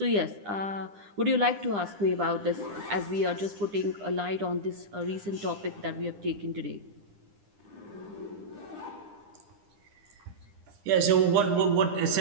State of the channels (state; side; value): late; left; 9.9 ms